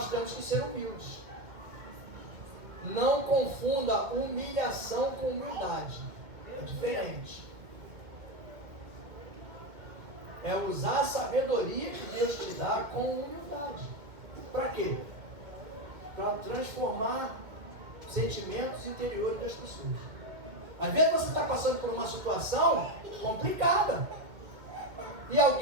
temos que ser humildes. Não confunda humilhação com humildade. É diferente. É usar a sabedoria que Deus te dá com humildade. Para quê? Para transformar sentimentos interiores das pessoas. Às vezes você está passando por uma situação complicada. E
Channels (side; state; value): left; late; 2.2 ms